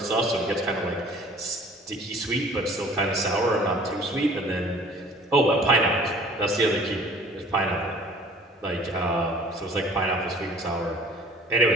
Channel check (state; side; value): normal; both; correlation 0.50